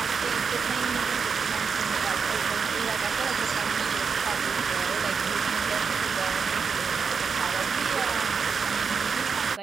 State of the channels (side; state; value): left; quieter; 5.7 dB